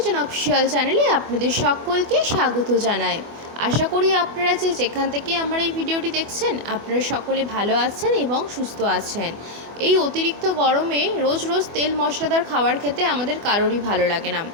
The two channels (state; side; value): late; left; 24 ms